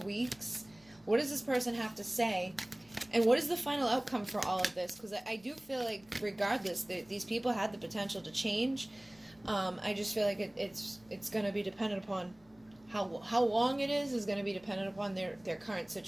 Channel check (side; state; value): left; noise; rumble, 29 dB below the sound